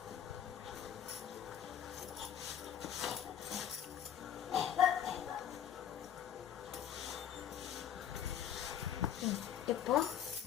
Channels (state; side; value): quieter; right; 9.3 dB